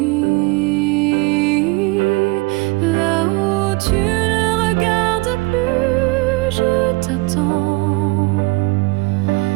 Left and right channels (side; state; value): left; quieter; 24.3 dB